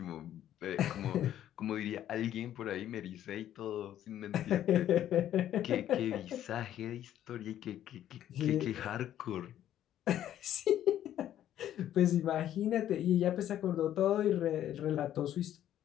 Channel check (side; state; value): right; quieter; 11.6 dB